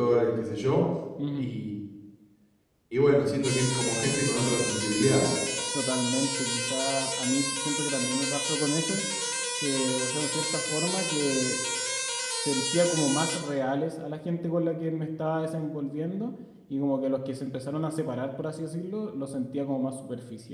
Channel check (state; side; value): identical; both; correlation 1.00